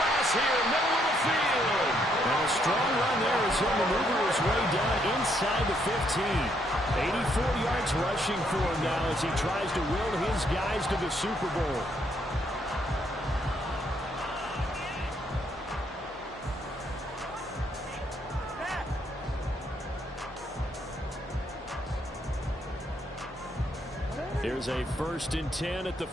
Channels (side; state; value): both; normal; correlation 0.73